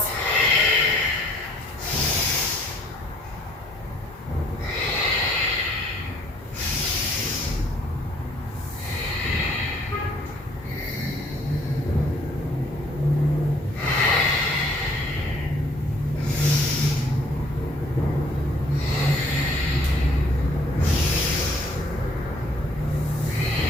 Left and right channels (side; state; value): both; normal; correlation 0.61